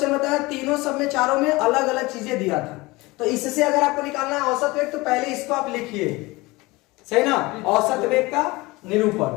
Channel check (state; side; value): quieter; right; 22.2 dB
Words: बताया, तीनों सब में चारों में अलग अलग चीजें दिया था। तो इससे अगर आपको निकालना है औसत वेग, तो पहले इसको आप लिखिए, सही ना। औसत वेग का